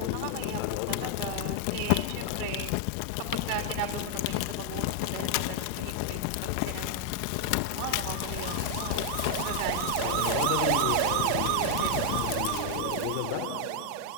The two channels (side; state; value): both; different; correlation 0.00